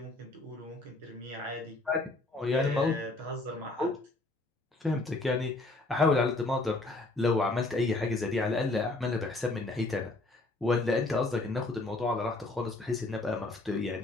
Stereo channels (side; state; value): right; quieter; 3.0 dB